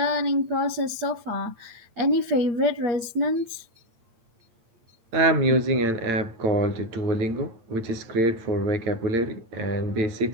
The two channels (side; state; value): left; late; 8.4 ms